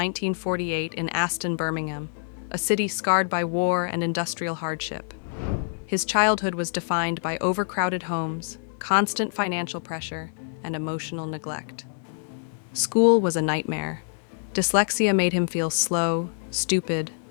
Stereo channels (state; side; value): silent; right; digital silence